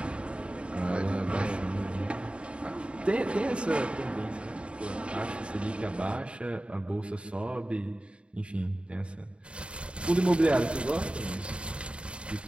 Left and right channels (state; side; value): late; left; 0.057 ms